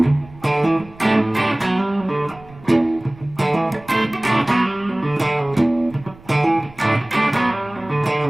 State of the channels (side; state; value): right; noise; rumble, 22 dB below the sound